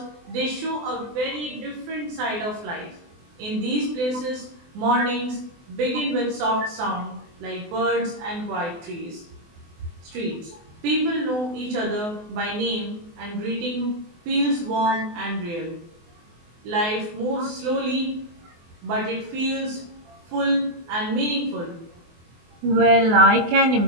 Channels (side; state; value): left; late; 24 ms